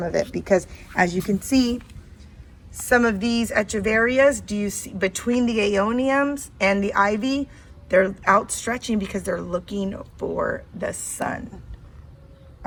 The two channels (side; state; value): both; identical; correlation 1.00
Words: of it because as you can see, some of these echeverias, do you see between the aeoniums and the ivy, they're outstretching because they're looking for the sun,